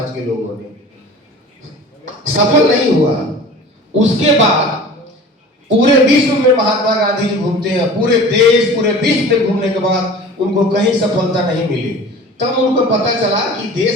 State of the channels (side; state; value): both; normal; correlation 0.41